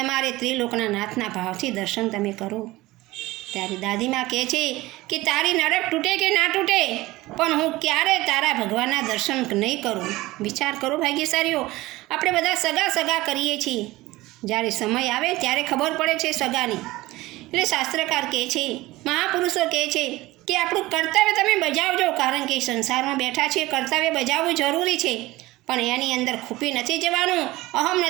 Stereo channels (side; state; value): left; quieter; 19.1 dB